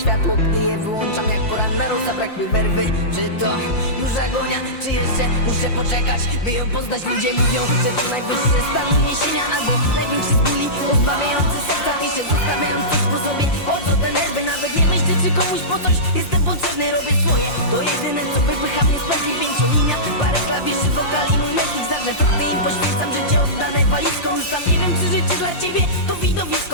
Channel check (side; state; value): right; late; 5.7 ms